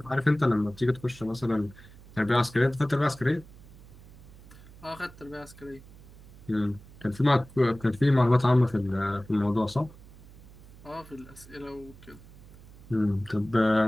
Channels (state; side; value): noise; right; hum, 20 dB below the sound